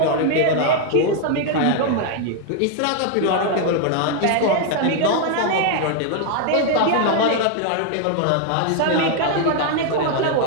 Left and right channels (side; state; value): both; different; correlation 0.00